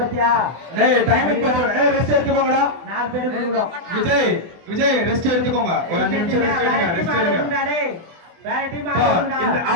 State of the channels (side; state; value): left; late; 24 ms